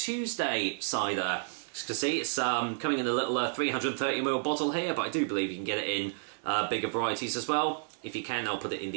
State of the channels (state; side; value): silent; left; digital silence